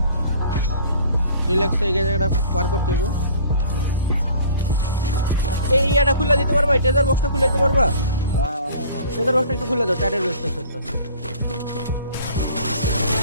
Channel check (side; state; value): both; inverted; correlation -0.49